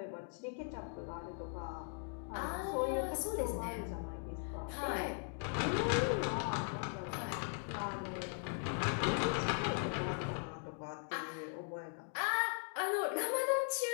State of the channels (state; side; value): silent; right; 52 dB below the other